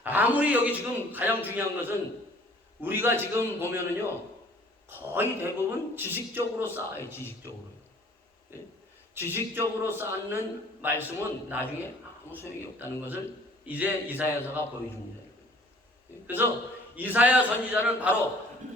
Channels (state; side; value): normal; both; correlation 0.53